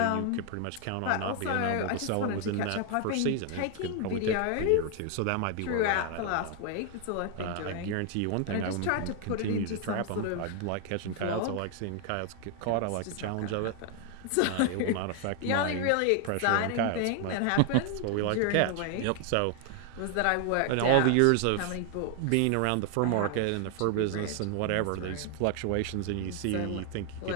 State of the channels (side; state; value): both; different; correlation 0.00